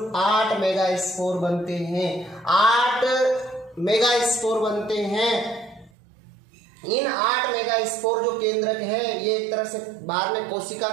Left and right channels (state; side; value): drops out; left; at 5.9 s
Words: 8 मेगा स्पोर बनते हैं। 8 मेगा स्पोर बनते हैं। इन 8 मेगा स्पोर जो केंद्रक है, ये एक तरह से बाद में कोशिका